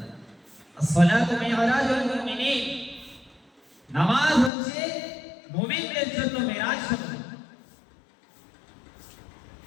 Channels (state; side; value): drops out; right; at 4.5 s